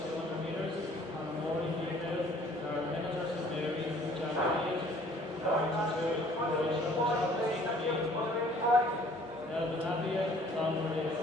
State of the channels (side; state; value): both; normal; correlation 0.56